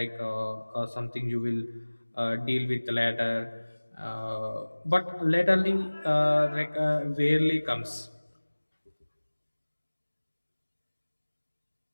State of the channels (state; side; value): inverted; both; correlation -1.00